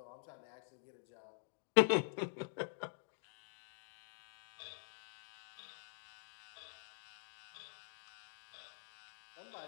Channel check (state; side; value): silent; right; digital silence